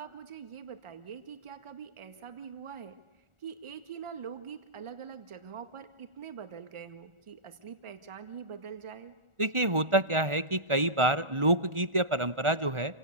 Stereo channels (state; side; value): late; left; 1.4 ms